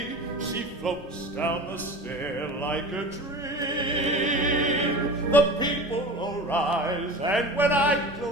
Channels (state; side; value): normal; both; correlation 0.34